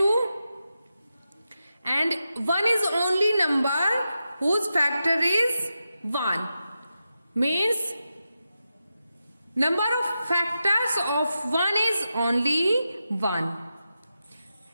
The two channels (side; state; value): both; inverted; correlation -0.89